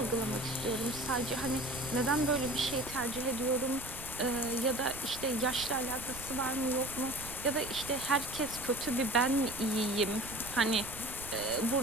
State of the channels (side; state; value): right; noise; rumble, 14 dB below the sound